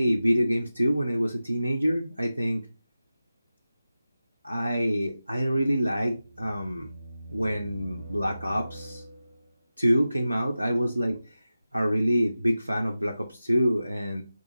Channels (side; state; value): both; inverted; correlation -0.94